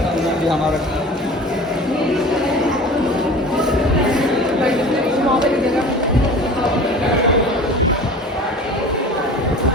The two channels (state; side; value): normal; both; correlation 0.39